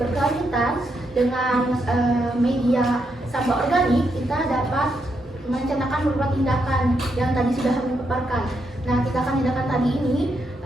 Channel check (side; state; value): both; normal; correlation 0.80